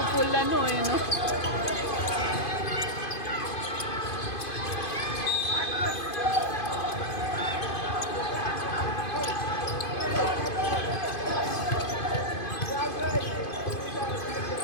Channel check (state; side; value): late; right; 2.5 ms